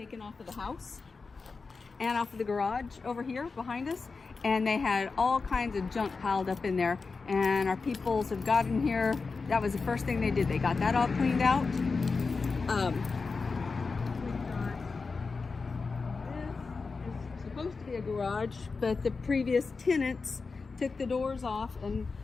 off of the house and off of the garage over here behind us, and they had all kinds of junk piled up in there, and our peoples have got in here. That was the first thing they did. They got that all cleaned out. This is supposed to be a garage, but the previous tenants took the doors off and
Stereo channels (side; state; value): right; quieter; 4.4 dB